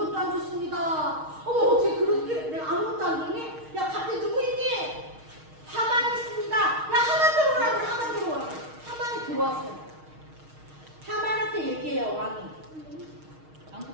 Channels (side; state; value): left; late; 6.4 ms